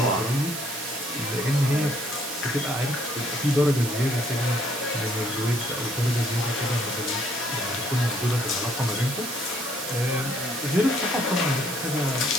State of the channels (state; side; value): noise; right; hiss, 6 dB below the sound